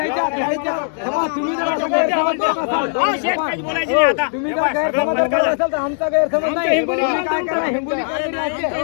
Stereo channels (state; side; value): silent; right; digital silence